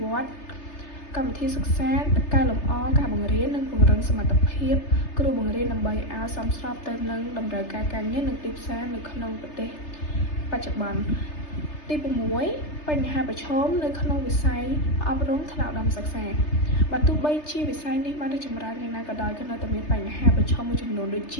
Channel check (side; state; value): right; late; 3.3 ms